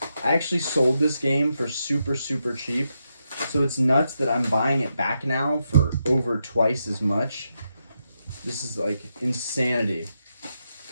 I actually sold this game for super, super cheap. So it's nuts that I'm buying it back now for over twice as much. This is like insanity.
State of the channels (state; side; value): inverted; both; correlation -0.84